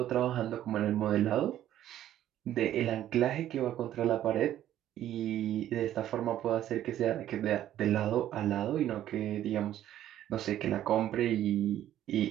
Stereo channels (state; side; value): quieter; left; 12.1 dB